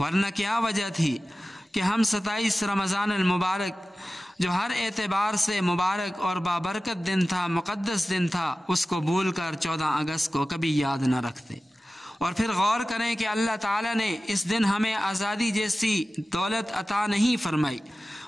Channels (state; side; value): normal; both; correlation 0.95